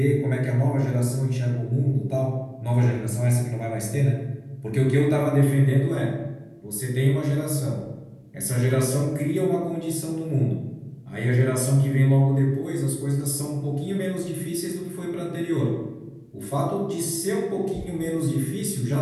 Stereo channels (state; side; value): identical; both; correlation 1.00